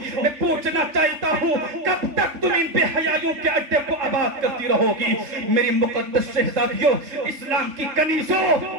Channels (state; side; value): late; left; 3.5 ms